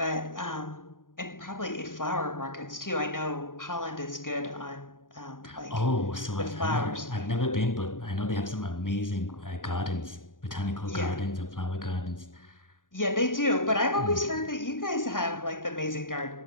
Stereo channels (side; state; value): right; late; 0.89 ms